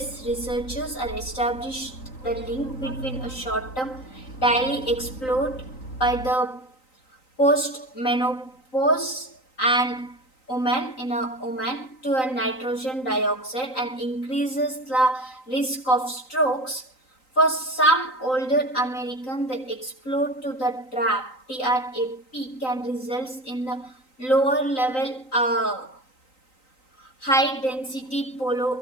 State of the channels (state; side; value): late; right; 3.9 ms